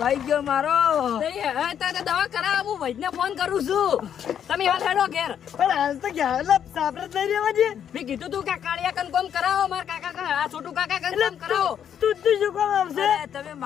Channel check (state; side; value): quieter; right; 9.0 dB